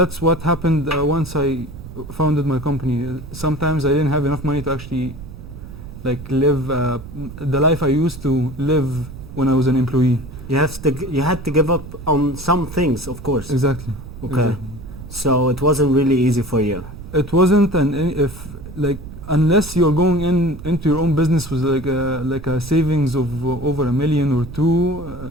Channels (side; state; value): right; noise; rumble, 13 dB below the sound